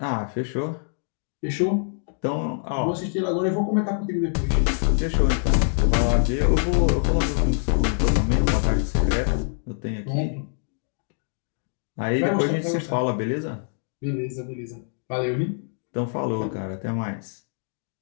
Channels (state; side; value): silent; right; 62 dB below the other